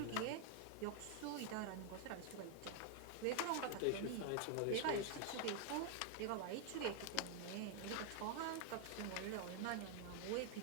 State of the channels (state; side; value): different; both; correlation 0.00